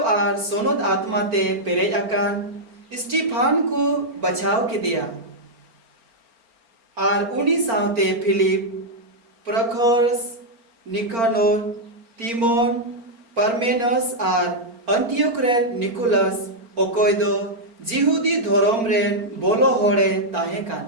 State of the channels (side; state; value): left; late; 4.4 ms